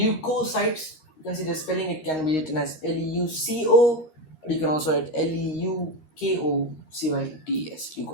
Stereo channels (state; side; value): late; right; 13 ms